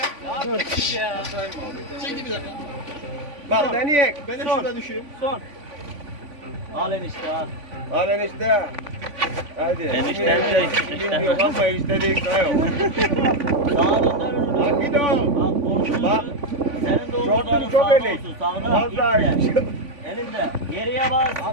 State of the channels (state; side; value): late; left; 3.5 ms